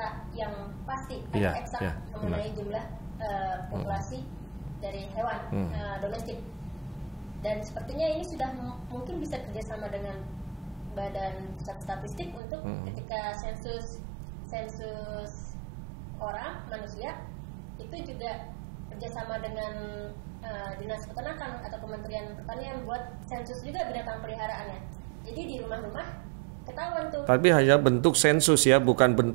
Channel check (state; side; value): drops out; left; at 12.4 s